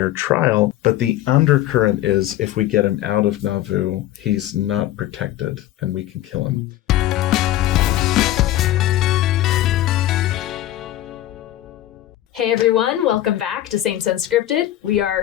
trial. But the undercurrent is, if we get him out of Nauvoo, he's not protected and we can kill him. Hey everyone, welcome back to Saints Unscripted. We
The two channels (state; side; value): quieter; right; 13.8 dB